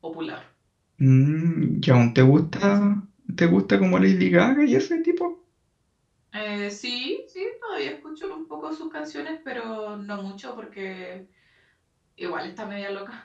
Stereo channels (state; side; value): identical; both; correlation 1.00